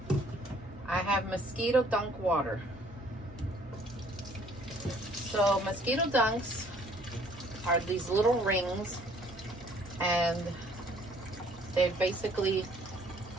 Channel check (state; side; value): normal; both; correlation 0.59